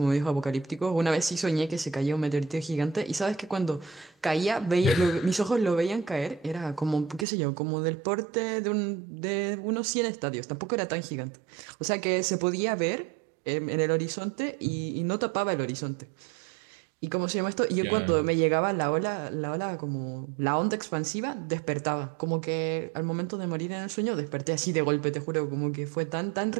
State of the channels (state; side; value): drops out; left; at 7.2 s